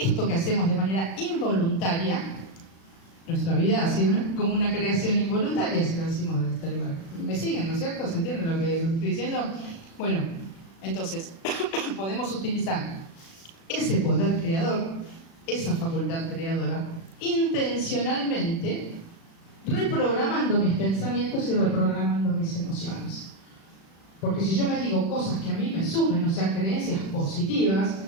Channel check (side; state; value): right; late; 36 ms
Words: que hacemos de manera involuntaria, nuestra vida ha sido como una creación involuntaria, si lo decimos desde este lugar. ¿Me siguen, no es cierto? ¿Se entiende lo que estoy diciendo? Bueno, entonces, podemos utilizar ese poder creador, esa facultad creadora, intencionalmente reprogramando mis pensamientos y reprogramando mis emociones. Porque si yo me digo cosas que a mí me sumen, o sea, creencias positivas,